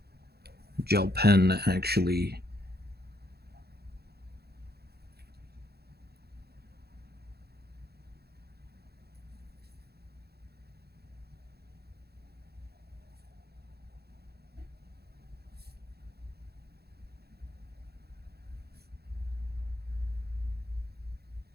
gel pen actually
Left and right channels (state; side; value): late; left; 0.46 ms